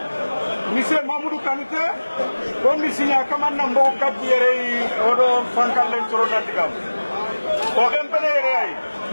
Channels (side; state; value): both; inverted; correlation -1.00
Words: Monsieur Mamoudou Kanute, comme Monsieur Nyakaman Nambo Kabiere, Odo Frankalen Soronandigam. Au Rempene,